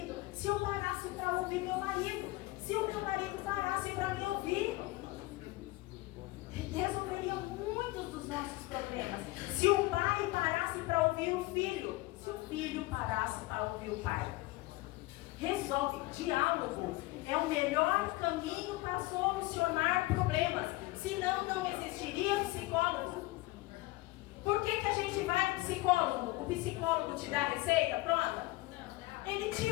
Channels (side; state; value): right; quieter; 20.2 dB